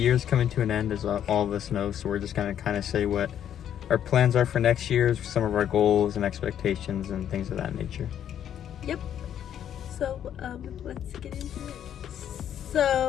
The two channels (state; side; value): quieter; right; 9.9 dB